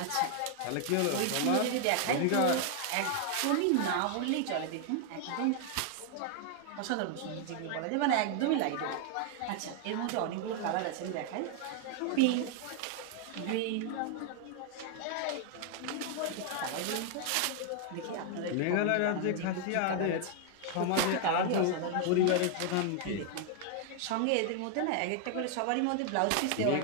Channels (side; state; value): both; different; correlation 0.00